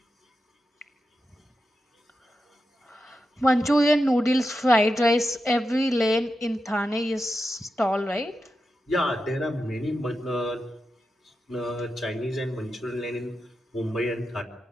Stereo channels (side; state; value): both; normal; correlation 0.89